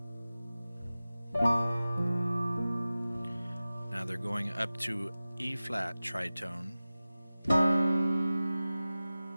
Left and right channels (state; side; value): inverted; both; correlation -0.96